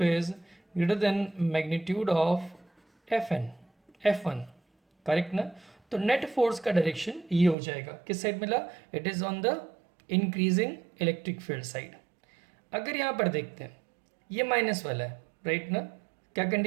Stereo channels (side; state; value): left; drops out; at 7.6 s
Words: is greater than magnitude of F1, correct ना। तो नेट फोर्स का डायरेक्शन ये हो जाएगा, किस साइड मिला, it is on the increasing electric field side. अगर यहाँ पर देखते हैं ये माइनस वाला है, राइट ना, क्या